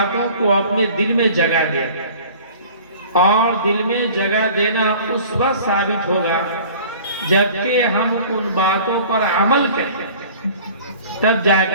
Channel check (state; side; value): inverted; both; correlation -0.46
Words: کو اپنے دل میں جگہ دے، اور دل میں جگہ دینا اس وقت ثابت ہوگا جبکہ ہم ان باتوں پر عمل کریں تب جا